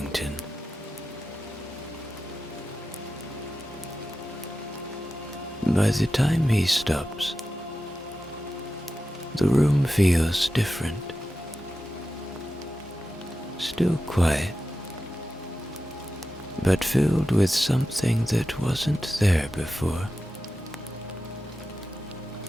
By the time he stops, the room feels different. Still quiet, but filled with something that wasn't there before.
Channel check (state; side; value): normal; both; correlation 0.92